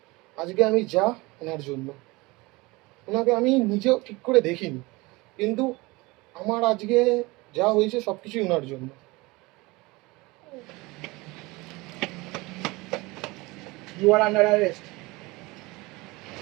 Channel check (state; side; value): quieter; left; 23.0 dB